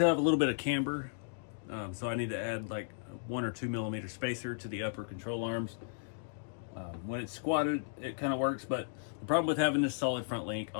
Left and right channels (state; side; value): silent; right; digital silence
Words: have a little bit of camber, so I need to add like 1 or 2 millimeter spacer to the upper control arms. When it's squatted, it kind of works, but the problem with having this solid front link,